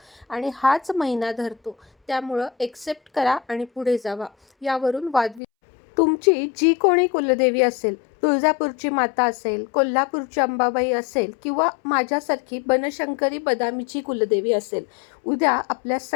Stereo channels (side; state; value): right; drops out; at 5.4 s